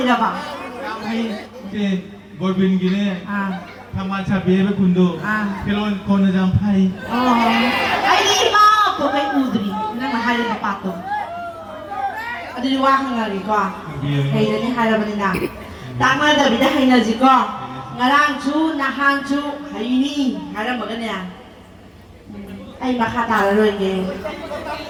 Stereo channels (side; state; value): both; identical; correlation 1.00